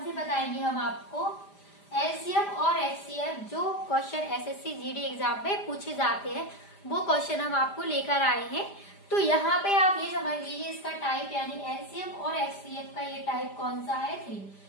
से बताएंगे हम आपको, एलसीएम और एचसीएम जो क्वेश्चन एसएससी जीडी एग्जाम में पूछे जाते हैं वो क्वेश्चन हम आपको लेकर आए हैं। तो यहाँ पे आप ये समझ लीजिए इसका टाइप यानी एलसीएम और एचसीएम का ये टाइप कौन सा है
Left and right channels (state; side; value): late; right; 5.0 ms